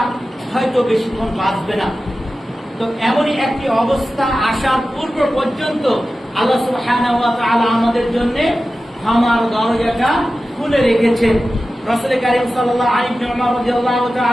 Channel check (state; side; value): normal; both; correlation 0.94